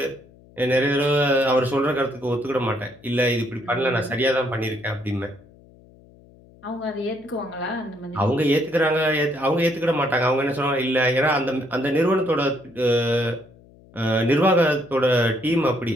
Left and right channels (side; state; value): left; noise; hum, 26 dB below the sound